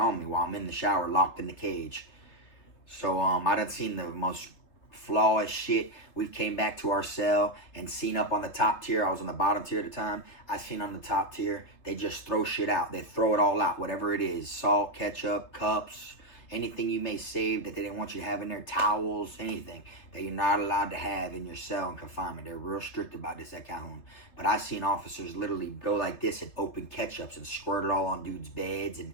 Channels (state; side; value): late; right; 3.3 ms